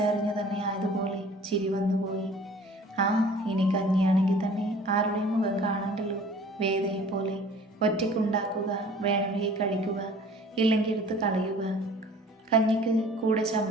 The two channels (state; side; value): normal; both; correlation 0.49